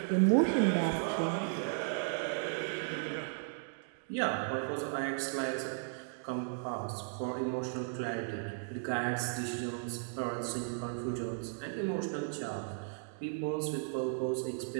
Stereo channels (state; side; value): silent; left; digital silence